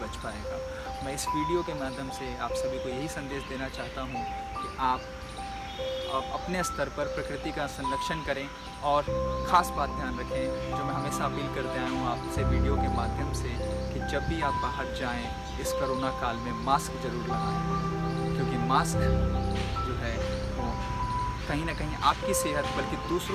पाएगा। मैं इस वीडियो के माध्यम से आप सभी को यही संदेश देना चाहता हूँ कि आप अपने स्तर पर प्रकृति का संरक्षण करें। और ख़ास बात ध्यान रखें, जो मैं हमेशा अपील करते आया हूँ आपसे वीडियो के माध्यम से, कि जब भी आप बाहर जाएं इस कोरोना काल में मास्क ज़रूर लगाएं, क्योंकि मास्क जो है वो कहीं ना कहीं आपकी सेहत बल्कि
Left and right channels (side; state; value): both; identical; correlation 1.00